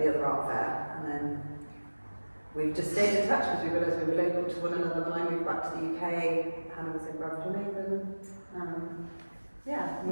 the other art fair, and then we've just stayed in touch because we realised we were local to one another. When I moved back to the UK, Hannah was in Bradford.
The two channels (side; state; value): both; inverted; correlation -1.00